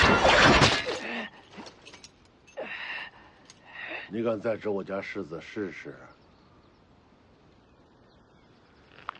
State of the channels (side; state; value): both; identical; correlation 1.00